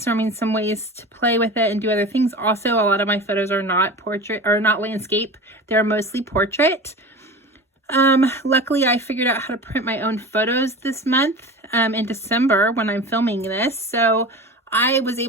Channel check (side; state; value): both; normal; correlation 0.33